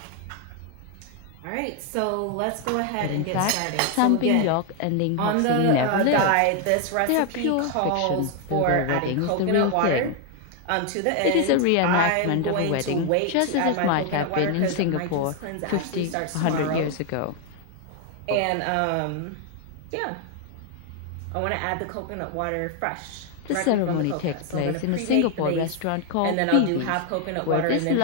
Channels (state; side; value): different; both; correlation 0.01